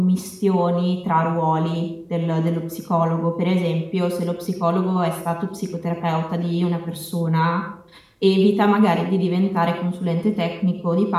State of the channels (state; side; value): identical; both; correlation 1.00